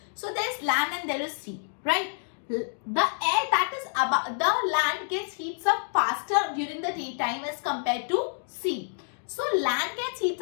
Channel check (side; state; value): right; silent; digital silence